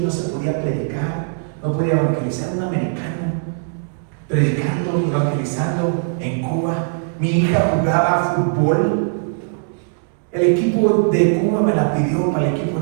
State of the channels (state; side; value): silent; left; digital silence